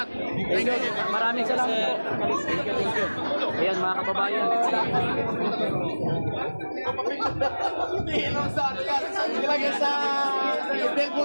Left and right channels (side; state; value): both; inverted; correlation -1.00